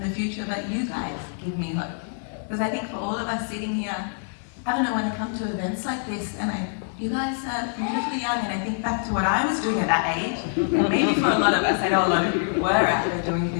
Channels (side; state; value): right; silent; 57 dB below the other